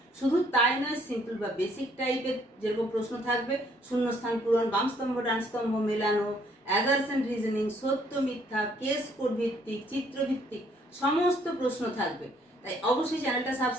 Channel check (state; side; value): normal; both; correlation 0.65